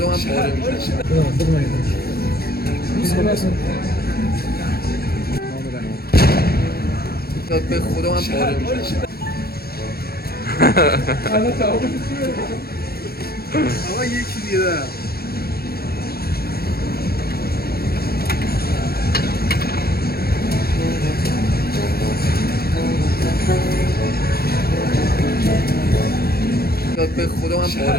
من پاره میشم. به خدا من پاره میشم. آقا یکی دیگه به خدا من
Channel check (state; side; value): late; right; 0.45 ms